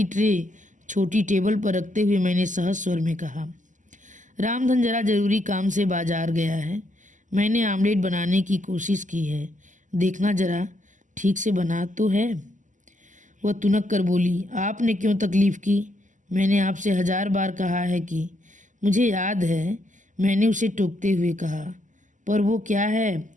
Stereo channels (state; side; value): late; left; 0.37 ms